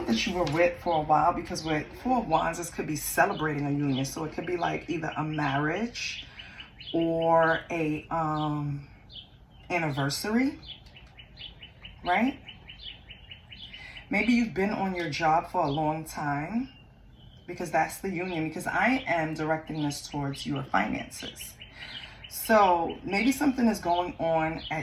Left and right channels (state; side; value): identical; both; correlation 1.00